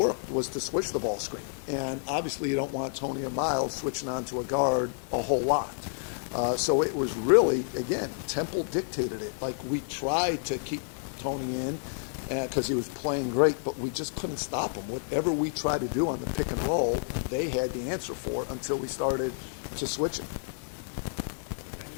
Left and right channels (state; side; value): silent; right; digital silence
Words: was to switch the ball screen. And obviously you don't want Tony and Miles switching onto a guard a whole lot. So it was really, again, Temple dictated it. Like, we tried to keep Tony in because he was playing great, but we just couldn't stop him. Whatever we tried to do on the pick and roll, they had the answer for it until we started to switch it.